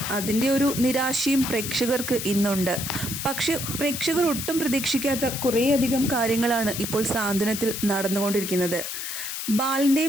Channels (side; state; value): left; noise; hiss, 5 dB below the sound